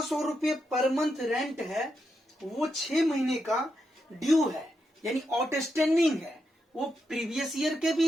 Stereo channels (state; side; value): normal; both; correlation 0.84